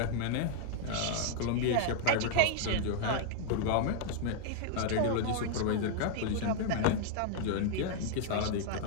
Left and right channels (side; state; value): both; different; correlation -0.01